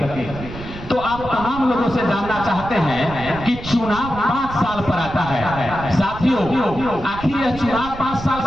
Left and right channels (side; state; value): right; noise; rumble, 12 dB below the sound